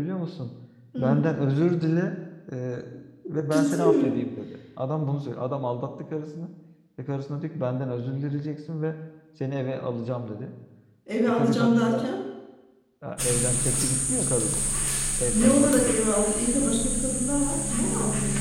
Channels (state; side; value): identical; both; correlation 1.00